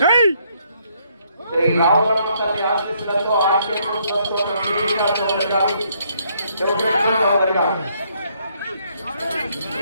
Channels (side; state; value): both; inverted; correlation -0.70